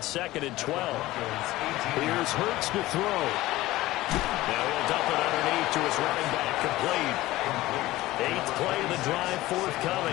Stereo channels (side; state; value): right; quieter; 17.3 dB